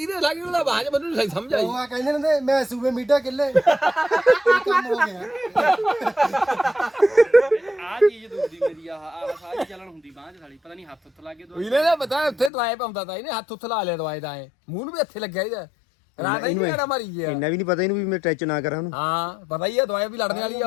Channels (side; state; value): right; drops out; at 12.5 s